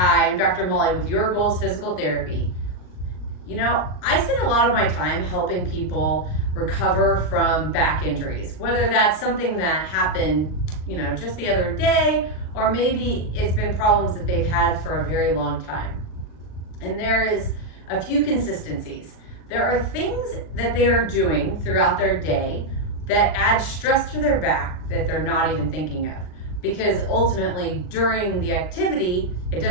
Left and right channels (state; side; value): late; right; 39 ms